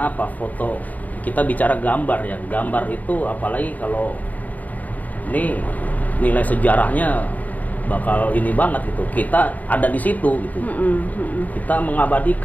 apa? Foto, kita bicara gambar ya, gambar itu apalagi kalau ini nilai sejarahnya bakal ini banget gitu, kita ada di situ gitu. Kita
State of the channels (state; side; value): late; right; 0.077 ms